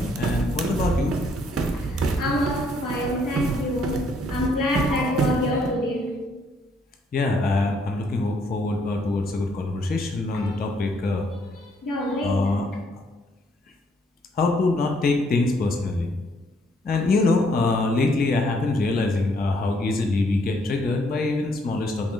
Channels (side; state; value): both; normal; correlation 0.69